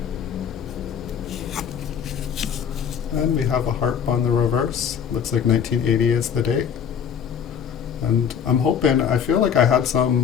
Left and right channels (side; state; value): right; quieter; 7.7 dB